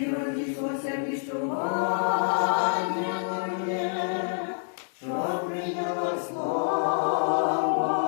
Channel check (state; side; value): silent; right; digital silence